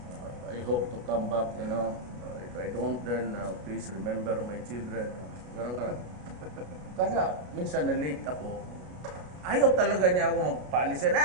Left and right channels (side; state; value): left; late; 33 ms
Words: I hope to come back, you know. If I don't, then please remember my children. Kaya minsan na-late ako. Ayaw talaga niya ako magpaalisin.